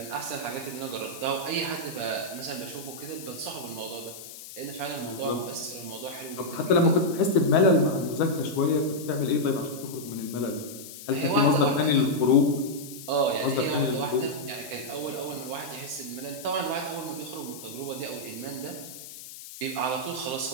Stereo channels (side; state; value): left; noise; hiss, 14 dB below the sound